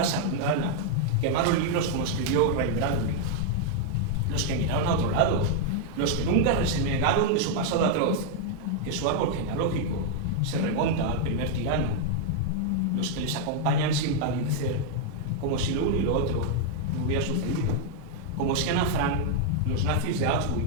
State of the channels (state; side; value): different; both; correlation 0.00